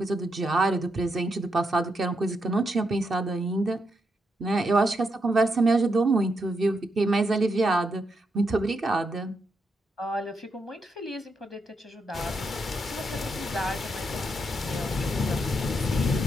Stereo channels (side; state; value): both; normal; correlation 0.81